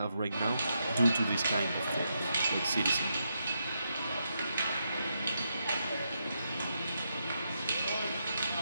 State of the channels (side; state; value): both; inverted; correlation -0.82